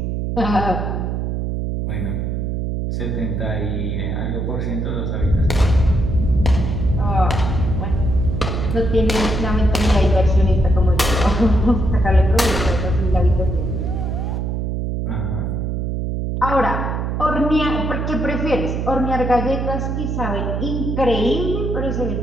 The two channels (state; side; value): noise; right; hum, 1 dB below the sound